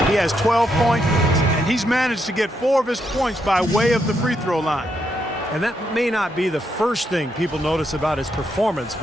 He has 12 points, and he's managed to get 4 of his points by way of the free throw line. And that may not be the first thing people notice about his performance,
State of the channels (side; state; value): both; normal; correlation 0.79